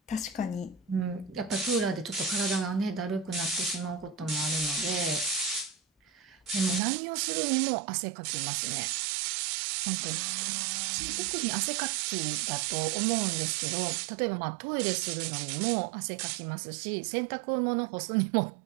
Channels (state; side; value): drops out; left; at 6.8 s